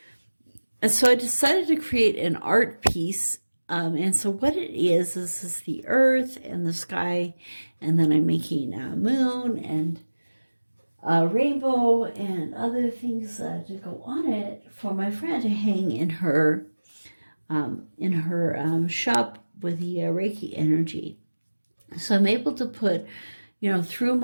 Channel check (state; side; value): inverted; both; correlation -1.00